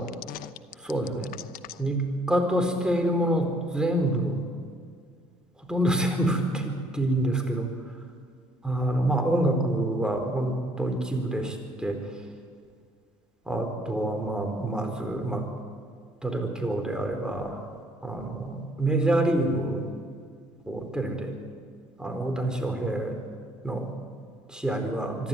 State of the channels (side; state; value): both; normal; correlation 0.64